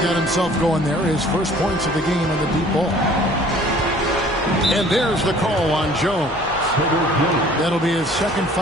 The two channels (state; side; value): noise; left; hum, 19 dB below the sound